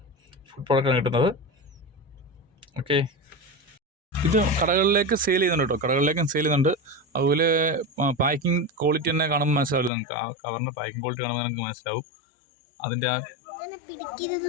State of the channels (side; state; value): right; drops out; at 9.9 s